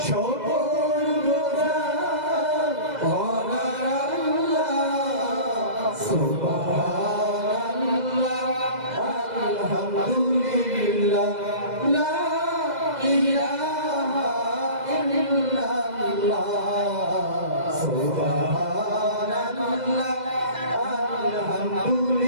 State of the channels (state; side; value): late; left; 2.0 ms